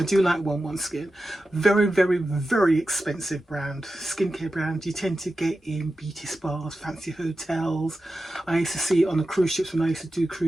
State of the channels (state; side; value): normal; both; correlation 0.92